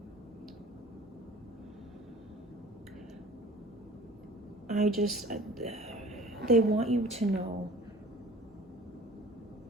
They want you to know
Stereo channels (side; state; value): both; normal; correlation 0.45